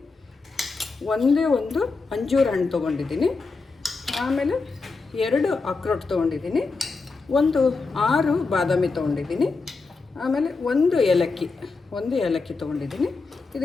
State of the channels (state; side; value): quieter; right; 4.1 dB